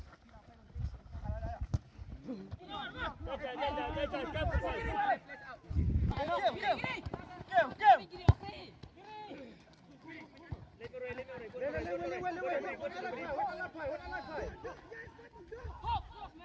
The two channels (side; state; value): both; identical; correlation 1.00